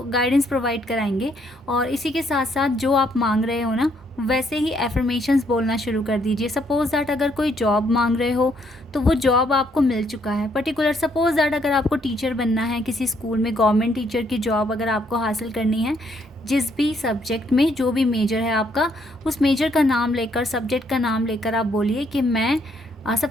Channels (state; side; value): normal; both; correlation 0.70